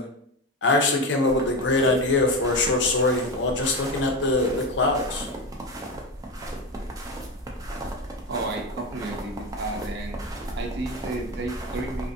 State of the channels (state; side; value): normal; both; correlation 0.19